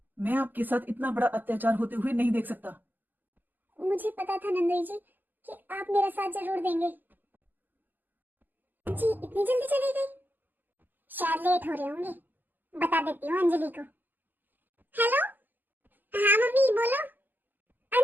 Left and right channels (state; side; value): late; left; 0.087 ms